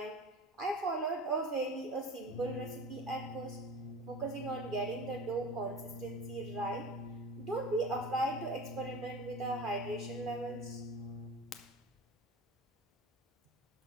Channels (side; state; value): both; normal; correlation 0.35